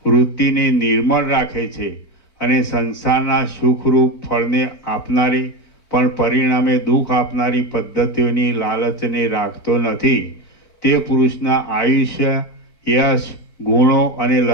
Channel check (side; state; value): right; late; 4.5 ms